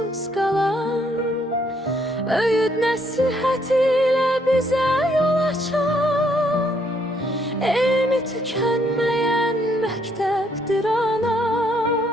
kalan, öğüt nasihat ile bize yol açan, elmi tükenmeyen mekteptir ana,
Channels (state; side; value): normal; both; correlation 0.70